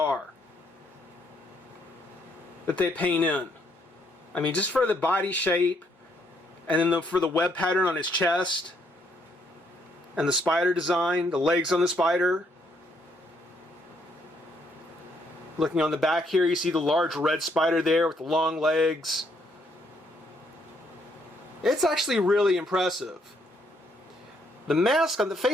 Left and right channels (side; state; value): both; normal; correlation 0.71